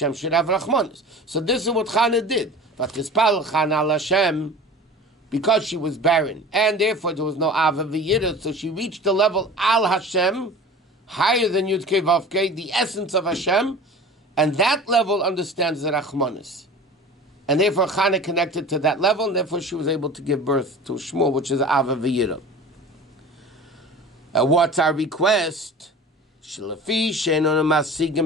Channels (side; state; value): both; normal; correlation 0.38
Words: should have Rachmanis. So this is what Chana did. But Tispal Chana al Hashem, because she was barren, and therefore there was no Ava V'Yirah, so she reached the level Al Hashem, higher than Yud Kei Vav Kei, the essence of Hashem, and that level understands the Rachmanis. And therefore Chana connected to that level, and therefore she was able to give birth to Shmuel, which is Ava V'Yira. What's our request?